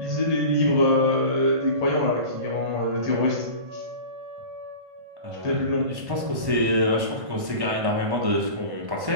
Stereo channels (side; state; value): left; late; 1.1 ms